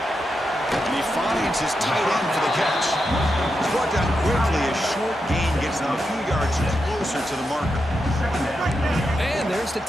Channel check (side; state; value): both; normal; correlation 0.86